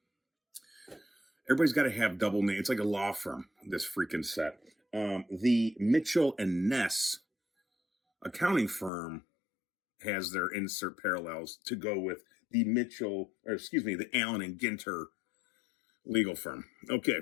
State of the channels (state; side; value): drops out; right; at 8.9 s